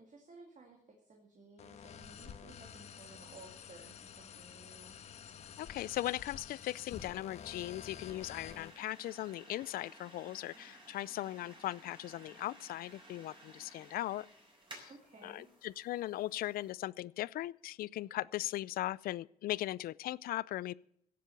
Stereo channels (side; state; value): right; quieter; 13.2 dB